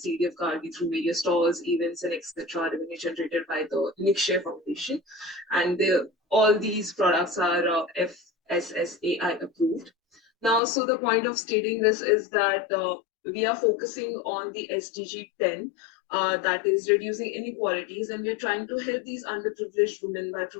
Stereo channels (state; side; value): drops out; right; at 10.6 s